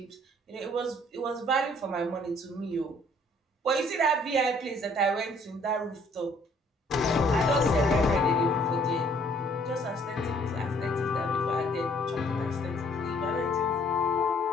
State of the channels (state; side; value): normal; both; correlation 0.61